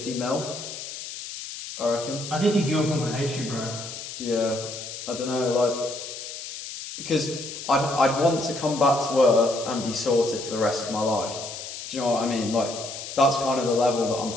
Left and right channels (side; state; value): left; noise; hiss, 9 dB below the sound